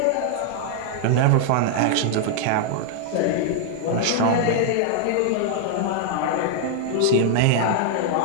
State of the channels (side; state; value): both; different; correlation 0.00